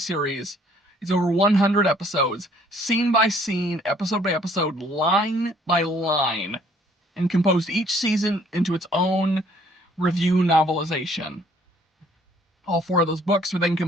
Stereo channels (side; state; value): both; normal; correlation 0.60